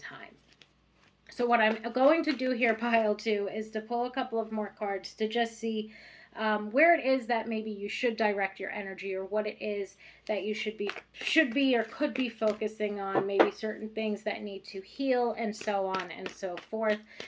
So what I'm going to do here, pile 2, is to pull a couple of more cards to just see where it is that maybe you should direct your energy, or what it is that you should be or could be focusing on, maybe certain things that need to heal, and so on and so forth.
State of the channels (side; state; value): both; identical; correlation 1.00